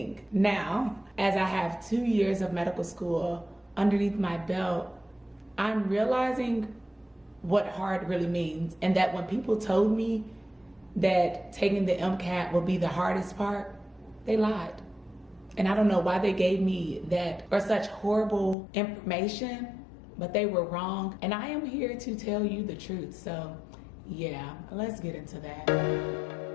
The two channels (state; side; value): drops out; right; at 18.6 s